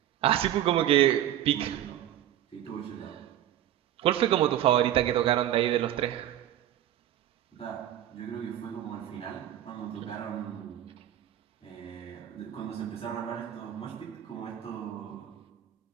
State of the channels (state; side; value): quieter; left; 11.9 dB